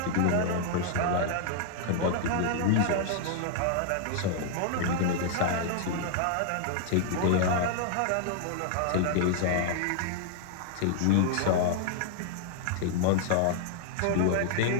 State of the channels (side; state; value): both; different; correlation -0.01